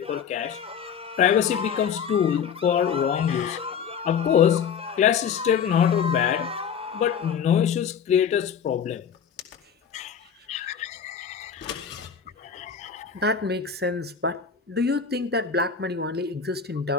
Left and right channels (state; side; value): quieter; right; 7.2 dB